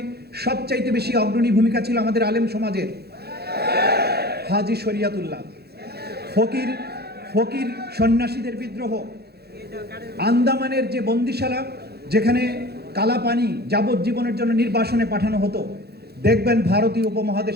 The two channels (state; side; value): late; left; 0.46 ms